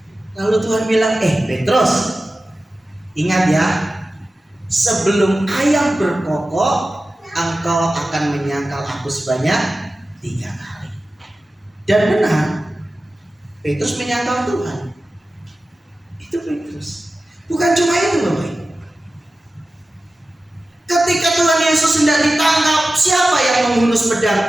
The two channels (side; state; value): both; normal; correlation 0.95